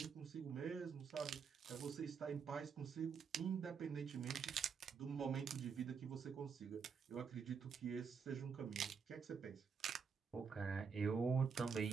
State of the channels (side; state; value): left; quieter; 6.0 dB